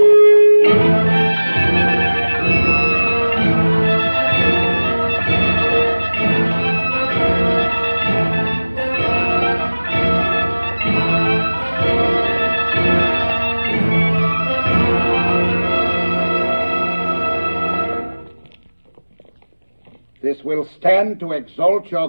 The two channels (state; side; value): inverted; both; correlation -1.00